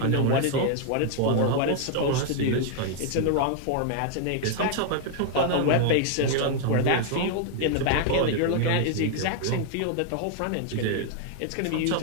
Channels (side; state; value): both; different; correlation 0.00